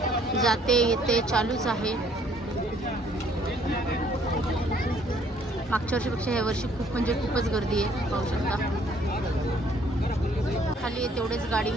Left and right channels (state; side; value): normal; both; correlation 0.62